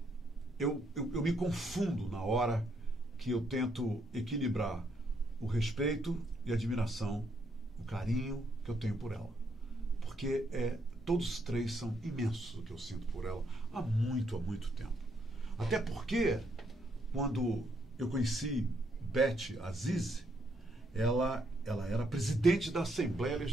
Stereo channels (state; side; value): normal; both; correlation 0.74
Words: eu me confundo na hora que eu tento equilibrar o respeito e a admiração, o carinho que eu tenho por ela. Porque todos os três são imensos o que eu sinto por ela há muito tempo. Até porque, quando eu conheci Beth Azizi, ela era presidente da Assembleia